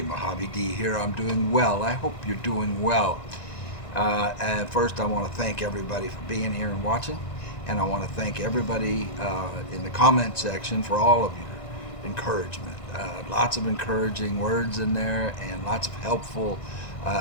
Mojave D here. I'm doing well. I hope you're doing well. And first, I want to thank everybody for being here and watching. And I want to thank everybody in the comment section for all of your encouragement. Lots of encouraging words in there and lots of helpful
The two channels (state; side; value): late; right; 1.9 ms